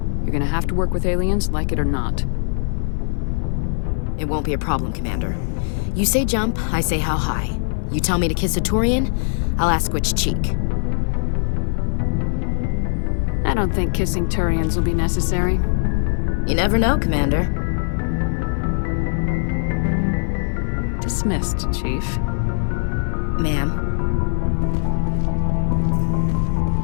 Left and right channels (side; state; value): right; silent; 56 dB below the other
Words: You're gonna have to work with aliens, like it or not. It won't be a problem, Commander. You say jump, I say how high. You tell me to kiss a Turian, I'll ask which cheek. I don't think kissing Turians will be necessary. You never know, Commander. Dismissed, Chief. Ma'am.